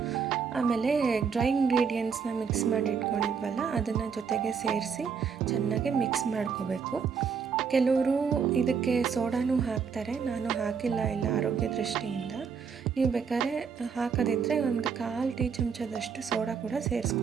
ಆಮೇಲೆ ಡ್ರೈ ಇಂಗ್ರೀಡಿಯೆಂಟ್ಸ್ನ ಮಿಕ್ಸ್ ಮಾಡಿ ಇಟ್ಕೊಂಡಿದ್ವಲ್ಲ ಅದನ್ನು ಜೊತೆಗೆ ಸೇರಿಸಿ ಚೆನ್ನಾಗಿ ಮಿಕ್ಸ್ ಮಾಡ್ಕೋಬೇಕು. ಕೆಲವರು ಇದಕ್ಕೆ ಸೋಡಾನೂ ಹಾಕ್ತಾರೆ, ನಾನು ಹಾಕಿಲ್ಲ ಇಲ್ಲ ಆರೋಗ್ಯ ದೃಷ್ಟಿಯಿಂದ. ನೀವು ಬೇಕಾದ್ರೆ ಹಾಕೋದಿದ್ರೆ ಒಂದು 1/4 ಟೀ ಚಮಚದಷ್ಟು ಸೋಡಾ ಕೂಡ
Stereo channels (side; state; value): left; quieter; 6.2 dB